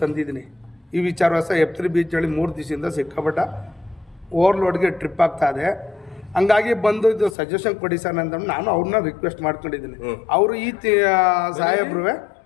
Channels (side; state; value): right; drops out; at 7.4 s